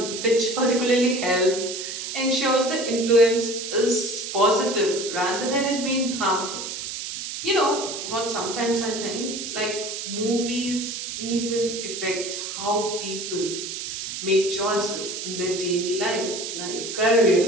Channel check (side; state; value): right; noise; hiss, 6 dB below the sound